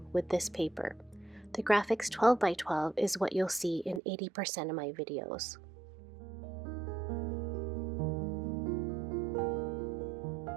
with this paper. The Graphics 12x12 is what you'll see in 80% of my videos.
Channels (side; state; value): left; drops out; at 4.0 s